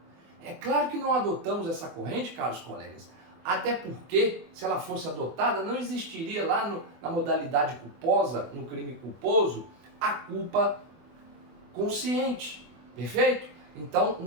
É claro que não adotamos essa corrente, caros colegas, até porque, se ela fosse adotada, não existiria lá na modalidade culposa, no crime culposo, a culpa consciente, perfeito? Então,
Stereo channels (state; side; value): late; left; 24 ms